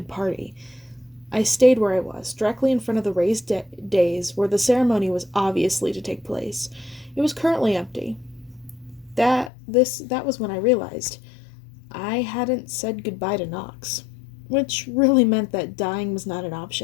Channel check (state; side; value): drops out; right; at 9.5 s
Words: party. I stayed where I was, directly in front of the raised dais where the ceremony was obviously to take place. It was currently empty. That was when I realized I hadn't said goodbye to Knox, which really meant that dying was not an